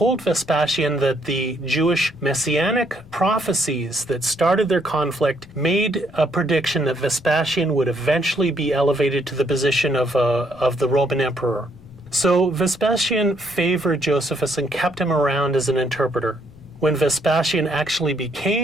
Vespasian that the Jewish messianic prophecies that started their conflict made a prediction that Vespasian would eventually be elevated to the position of the Roman emperor. So Vespasian favored Josephus and kept him around as an interpreter. When Vespasian actually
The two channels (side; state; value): left; noise; rumble, 23 dB below the sound